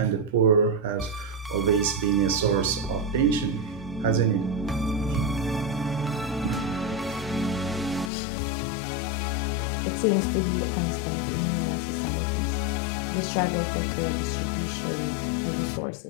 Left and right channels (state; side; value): drops out; right; at 8.1 s